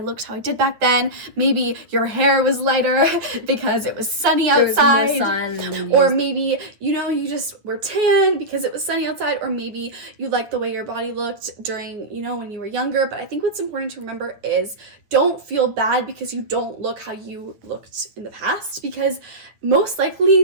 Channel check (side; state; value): left; late; 9.4 ms